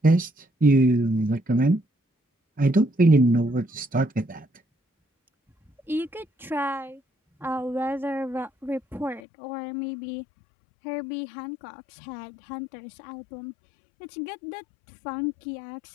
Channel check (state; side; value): drops out; right; at 9.2 s